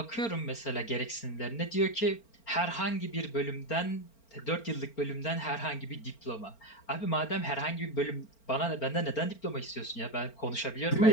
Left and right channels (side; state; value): right; late; 4.4 ms